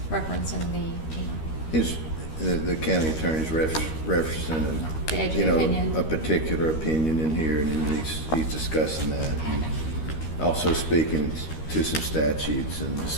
referenced in The county attorney's referencing The edge of opinion. a particular opinion in here, and then he's discussing that, and also speaking to some statutes and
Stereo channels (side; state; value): right; late; 13 ms